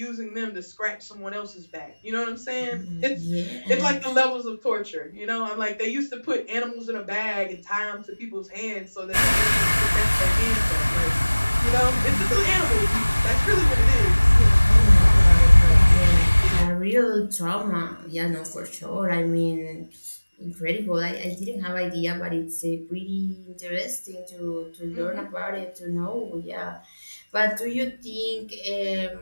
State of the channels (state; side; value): inverted; both; correlation -1.00